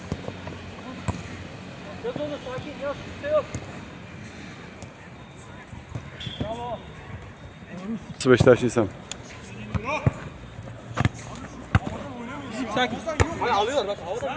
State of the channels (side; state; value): both; identical; correlation 1.00